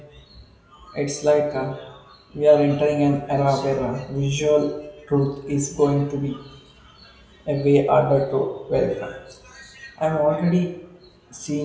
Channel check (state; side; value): identical; both; correlation 1.00